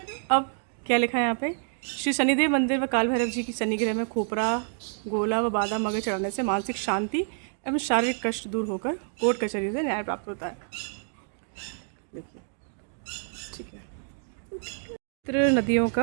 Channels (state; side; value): silent; left; 60 dB below the other